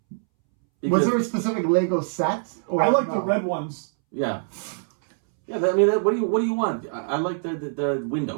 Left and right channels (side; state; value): left; silent; 63 dB below the other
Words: Was there a specific Lego set? Or I like no? the red ones. Yeah. Yeah, I mean, what do you want? I like the